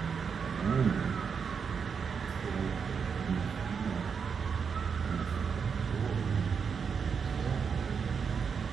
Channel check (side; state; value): left; quieter; 6.2 dB